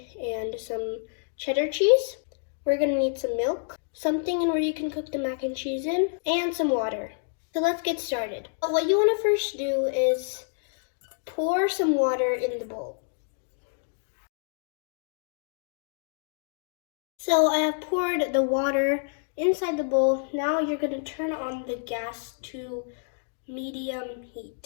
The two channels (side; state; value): right; silent; digital silence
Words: and some cheddar cheese. We're gonna need some milk, something in where you can cook the mac and cheese in, and some water. So let's get started. What you wanna first do is pour some water in the bowl. So I have poured the water inside the bowl. Now you're gonna turn on the gas to medium